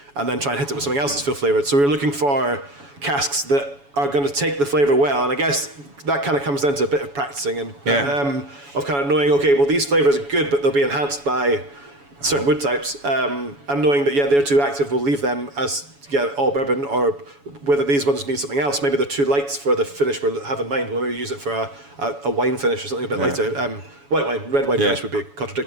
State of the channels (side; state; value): left; late; 7.1 ms